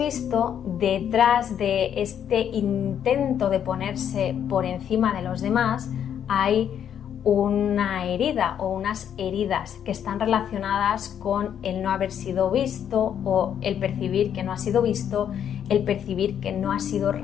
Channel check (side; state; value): right; quieter; 9.1 dB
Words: detrás de este intento de ponerse por encima de los demás hay una herida o unas heridas que están relacionadas con el no haber sido visto o el percibir que no ha sido visto, el percibir que no ha sido